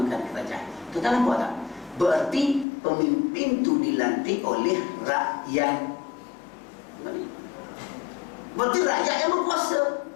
kerajaan. Tuan-tuan nampak tak? Berarti pemimpin itu dilantik oleh rakyat. Berarti rakyat yang berkuasa.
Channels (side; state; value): right; drops out; at 2.7 s